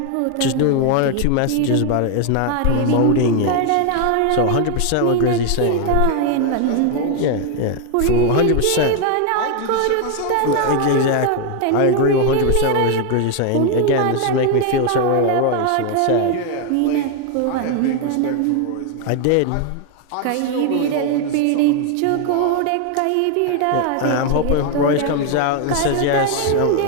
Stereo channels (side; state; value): both; different; correlation 0.01